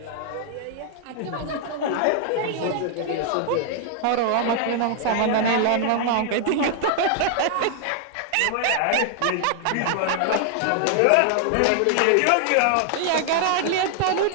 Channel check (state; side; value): different; both; correlation 0.00